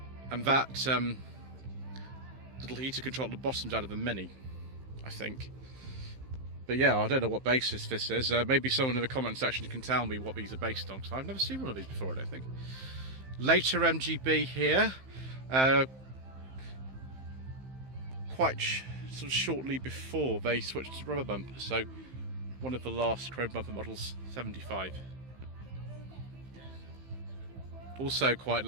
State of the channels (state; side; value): late; left; 15 ms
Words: and that little heater control at the bottom's out of a Mini, I think. But yeah, I don't know what basis this is. Maybe someone in the comment section can tell me what these are based on, because I've never seen one of these before, I don't think. Later MGB here, quite sort of shortly before they switched to rubber bumper, so one of the last chrome bumper models, 75. Also quite